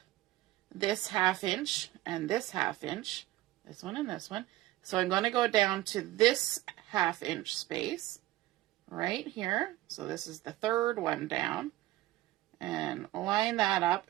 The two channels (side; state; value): left; quieter; 16.4 dB